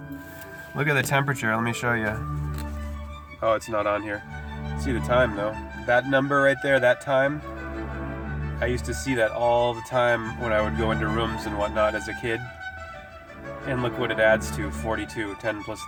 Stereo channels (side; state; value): both; identical; correlation 1.00